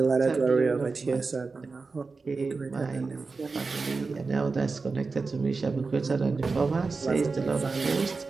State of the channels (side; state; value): left; quieter; 4.2 dB